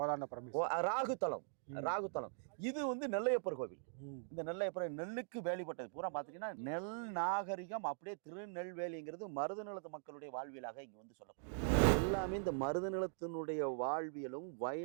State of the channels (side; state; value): left; silent; digital silence